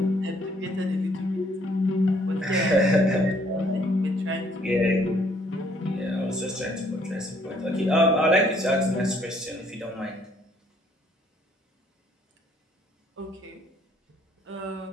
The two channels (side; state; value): both; normal; correlation 0.64